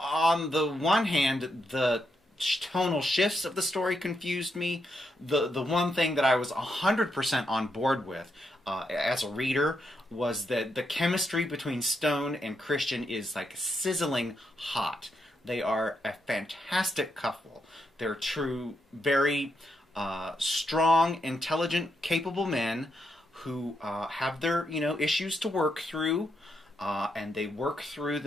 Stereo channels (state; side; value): normal; both; correlation 0.81